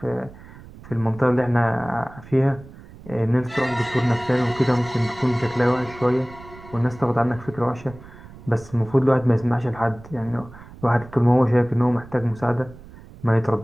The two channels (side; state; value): right; noise; rumble, 19 dB below the sound